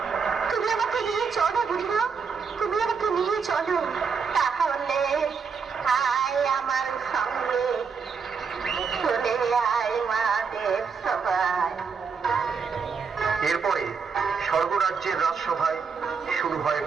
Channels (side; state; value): left; quieter; 5.7 dB